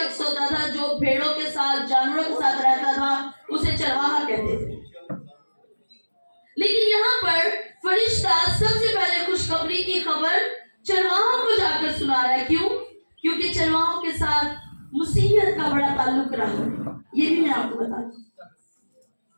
होता था, जो भेड़ों के साथ जानवरों के साथ रहता था, उसे चरवाहा कहते थे। लेकिन यहाँ पर फरिश्ता सबसे पहले खुशखबरी की खबर चरवाहों को जाकर सुना रहा है। क्यों? क्योंकि चरवाहों के साथ मुसीहत का बड़ा ताल्लुक रहा है। ये भी मैं आपको बता दूं,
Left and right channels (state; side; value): inverted; both; correlation -1.00